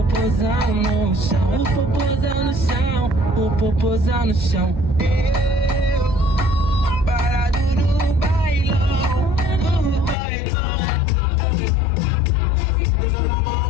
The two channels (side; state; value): right; drops out; at 10.2 s